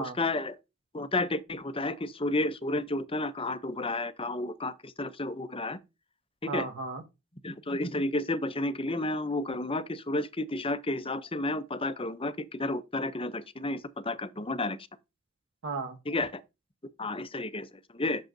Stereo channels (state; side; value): normal; both; correlation 0.30